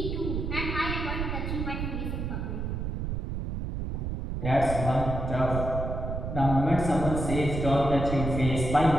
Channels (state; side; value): noise; right; rumble, 3 dB below the sound